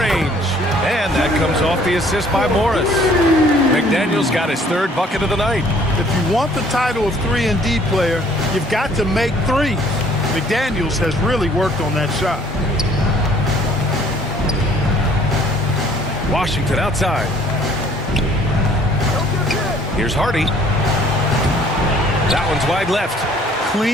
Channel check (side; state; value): both; normal; correlation 0.58